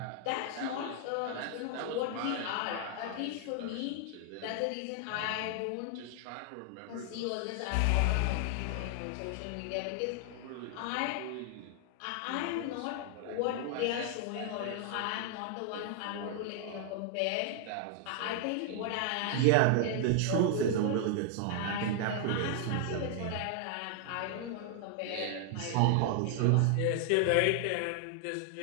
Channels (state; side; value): different; both; correlation 0.00